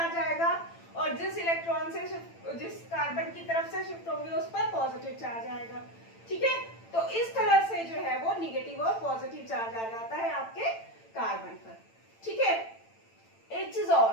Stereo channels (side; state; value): right; late; 8.9 ms